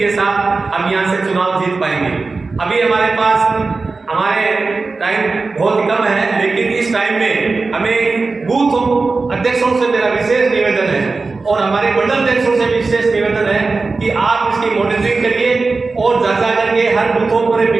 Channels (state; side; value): quieter; left; 3.9 dB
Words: साथ हम यहाँ से चुनाव जीत पाएंगे। अभी हमारे पास हमारे टाइम बहुत कम है, लेकिन इस टाइम में हमें बूथ अध्यक्षों से मेरा विशेष निवेदन है और हमारे मंडल अध्यक्षों से विशेष निवेदन है कि आप इसकी मॉनिटरिंग करिए और जा करके हर बूथों पर